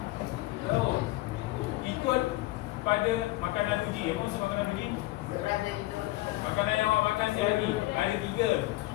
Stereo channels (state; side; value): quieter; right; 18.9 dB